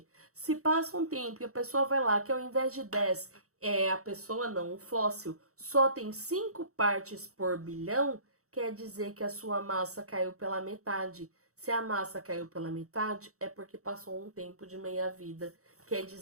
se passa um tempo e a pessoa vai lá, que ao invés de 10, a pessoa não, o fóssil, só tem 5 partes por bilhão, quer dizer que a sua massa caiu pela metade. Se a massa caiu pela metade, é porque passou um tempo de meia-vida. Quer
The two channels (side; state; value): left; late; 0.64 ms